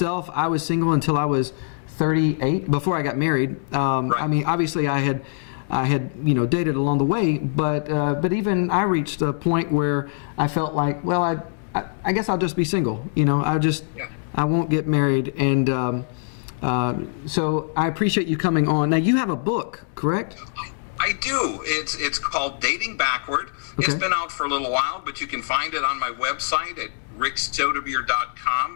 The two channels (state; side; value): silent; right; digital silence